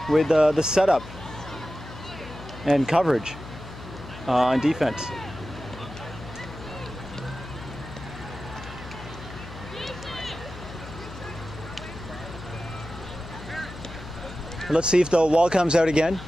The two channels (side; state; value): left; noise; hum, 13 dB below the sound